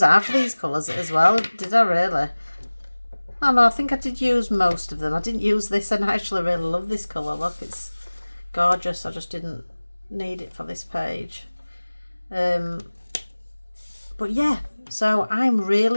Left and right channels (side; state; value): both; inverted; correlation -1.00